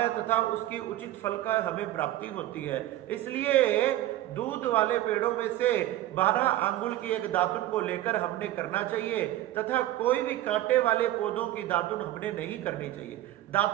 तथा उसकी उचित फल का हमें प्राप्ति होती है। इसलिए दूध वाले पेड़ों में से 12 आंगुल की एक दातुन को लेकर हमने करना चाहिए तथा कोई भी कांटे वाले पौधों की दातुन हमने नहीं करनी चाहिए।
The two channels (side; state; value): left; quieter; 14.5 dB